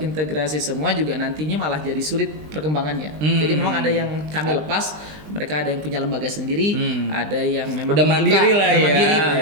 semua juga nantinya malah jadi sulit perkembangannya. Jadi memang ada yang kami lepas, mereka ada yang punya lembaga sendiri, ada yang memang udah mandiri lah ya. Mandiri.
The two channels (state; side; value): late; left; 20 ms